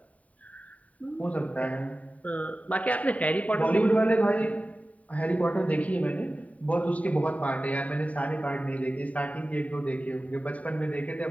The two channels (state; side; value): late; right; 0.069 ms